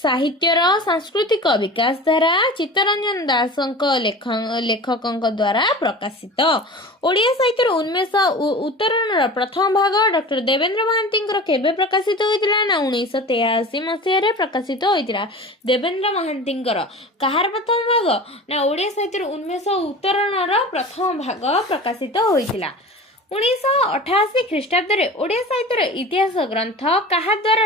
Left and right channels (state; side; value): normal; both; correlation 0.36